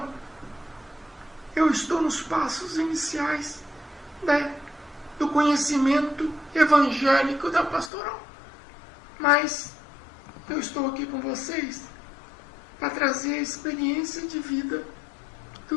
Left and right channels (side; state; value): right; drops out; at 7.9 s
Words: eu estou nos passos iniciais do conhecimento evangélico da pastoral. Mas eu estou aqui com vocês para trazer a experiência de vida